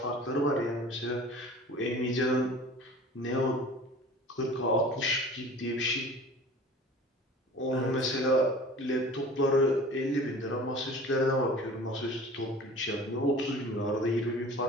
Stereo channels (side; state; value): both; normal; correlation 0.42